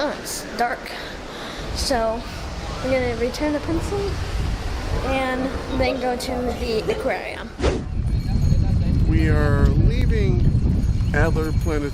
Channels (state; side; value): identical; both; correlation 1.00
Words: it's dark. So we're gonna return the pencil and then go to the aquarium. We are leaving Alder